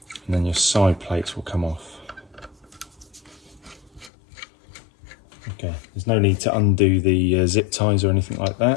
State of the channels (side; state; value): right; drops out; at 4.1 s